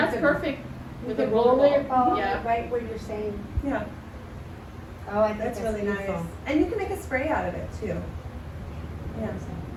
can. perfect You with the can roller roll your ball. ball, Yeah. right where you're saying, Yeah, oh, I think that's really beautiful. nice. And you can make a spray out of it too. Yeah.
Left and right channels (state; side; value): identical; both; correlation 1.00